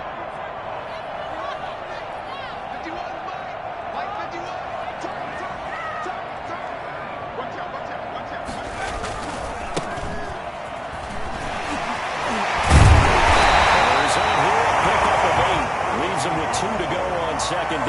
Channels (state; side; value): identical; both; correlation 1.00